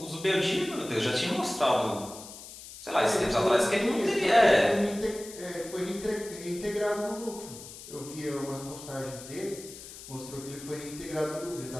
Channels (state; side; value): noise; left; hiss, 14 dB below the sound